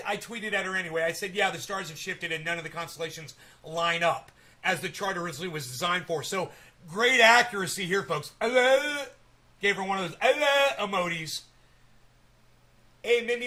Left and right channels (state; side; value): identical; both; correlation 1.00